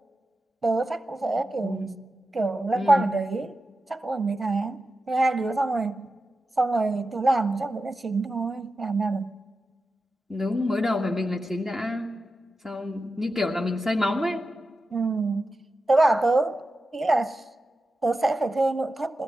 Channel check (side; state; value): both; normal; correlation 0.91